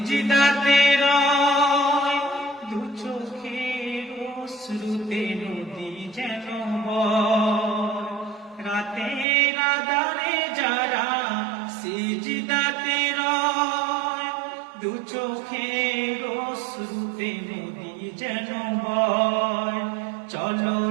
রয়, দু চোখের অশ্রুতে নদী যেন বয়। রাতের আঁধারে যারা সিজদাতে রয়, দু চোখের অশ্রুতে নদী যেন বয়।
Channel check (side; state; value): left; drops out; at 9.2 s